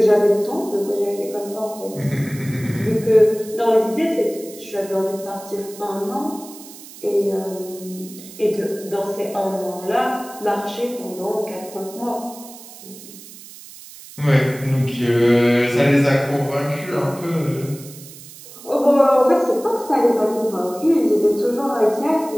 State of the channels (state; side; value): noise; right; hiss, 17 dB below the sound